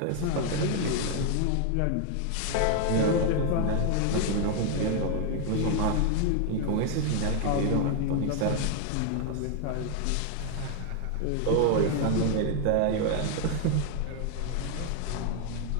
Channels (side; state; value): both; different; correlation 0.00